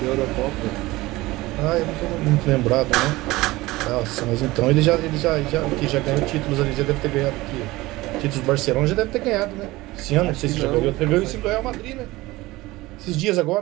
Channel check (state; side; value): quieter; left; 19.5 dB